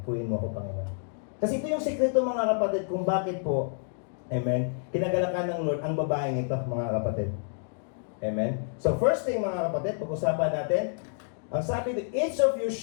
Puyin mo ako, Panginoon. Kasi ito yung sikreto, mga kapatid, kung bakit po, amen, kinagalakan ng Lord ang babaeng ito, mga kapatid. Amen? So first thing, mga kapatid, pag-usapan natin, ang sabi dito, each of you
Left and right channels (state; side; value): silent; right; digital silence